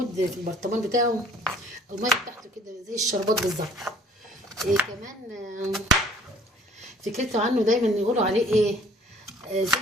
في البرطمان بتاعه، الميه بتاعته كده زي الشربات بالظبط. كمان فكرته عنه دايما يقولوا عليه ايه،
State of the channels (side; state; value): both; normal; correlation 0.55